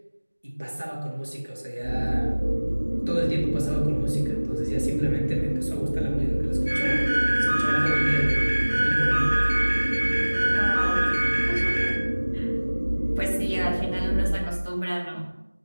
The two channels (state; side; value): inverted; both; correlation -1.00